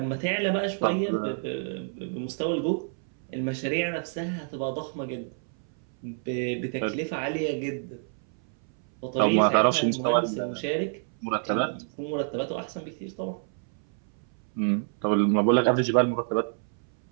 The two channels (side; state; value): left; silent; 59 dB below the other